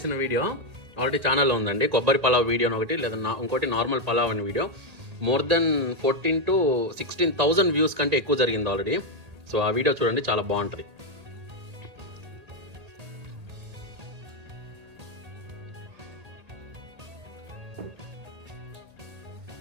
వీడియో ఆల్రెడీ ఛానల్లో ఉందండి. కొబ్బరి పలావ్ వీడియో ఒకటి, లేదా ఇంకోటి నార్మల్ పలావ్ అని video. More than 14,000 to 16,000 views కంటే ఎక్కువ జరిగింది ఆల్రెడీ. సో ఆ వీడియో చూడండి, చాలా బాగుంటుంది.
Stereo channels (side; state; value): left; late; 1.9 ms